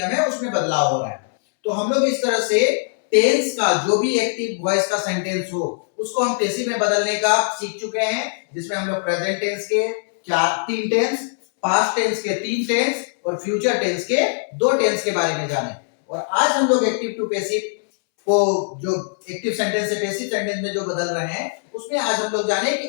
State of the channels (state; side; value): silent; right; 65 dB below the other